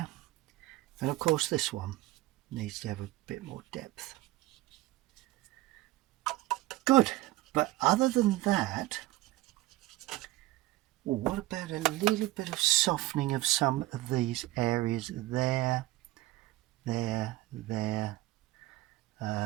And of course this one needs to have a bit more depth. Good. But other than that, well, what about a little bit of softening of some of these areas there, there.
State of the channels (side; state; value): left; quieter; 17.4 dB